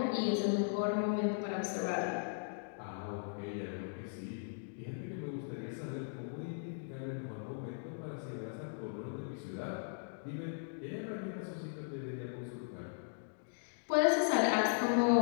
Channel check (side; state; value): right; silent; digital silence